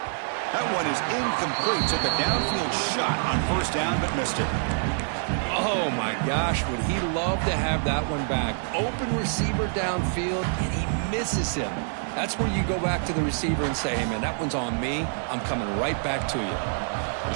That one is incomplete. Took a downfield shot on first down, but missed it. Oh, my gosh, would he love to have that one back. Open receiver downfield, and he misses him. That's where you go back to the receiver and say, hey, man, that one's on me. I'm coming right back to you.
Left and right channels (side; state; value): left; silent; digital silence